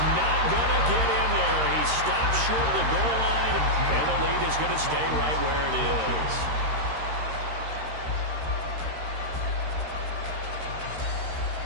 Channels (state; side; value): late; left; 13 ms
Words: not going to get in there. He stops short of the goal line, and the lead is going to stay right where it is.